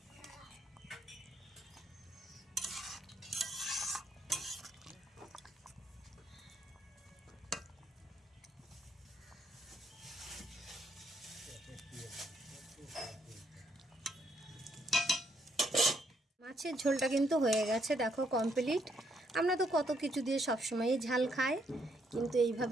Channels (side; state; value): both; normal; correlation 0.73